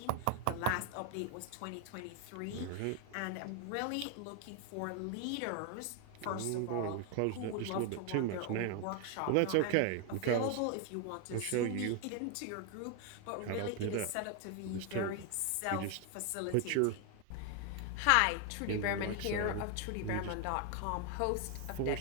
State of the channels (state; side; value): different; both; correlation 0.01